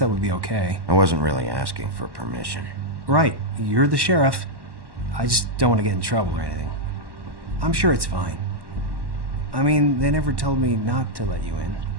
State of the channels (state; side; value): late; left; 1.1 ms